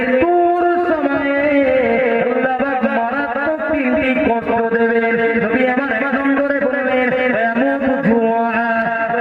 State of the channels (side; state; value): both; identical; correlation 1.00